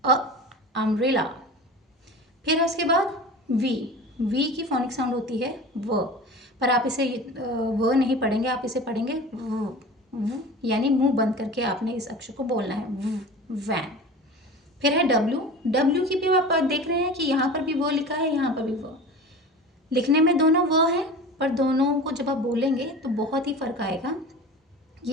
अम्ब्रेला। फिर है उसके बाद वी, वी की फोनिक साउंड होती है व, पर आप इसे व नहीं पढ़ेंगे, आप इसे पढ़ेंगे व, यानी मुंह बंद करके आपने इस अक्षर को बोलना है वैन। फिर है डब्ल्यू, डब्ल्यू की भी आप देख रहे हैं कि यहाँ पर भी वो लिखा है, यहाँ पर भी वो, लिखने में दोनों वो है, पर दोनों को जब आप बोलेंगे तो बहुत ही फर्क आएगा।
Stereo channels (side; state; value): both; normal; correlation 0.35